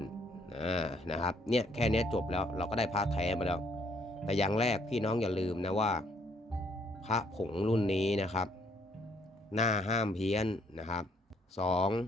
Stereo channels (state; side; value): normal; both; correlation 0.67